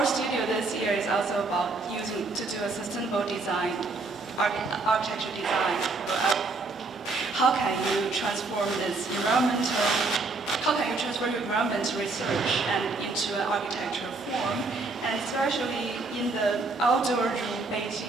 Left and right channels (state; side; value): quieter; left; 3.6 dB